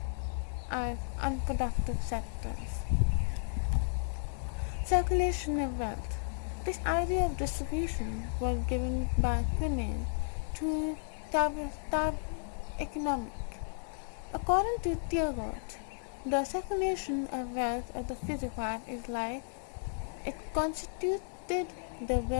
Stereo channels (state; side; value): silent; right; digital silence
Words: as unproductive sectors. Circulation of wealth. This idea of distribution was given by Quinney to Tab economic. According to Thiebaud, the circulation of wealth of the physical life is like it constituted the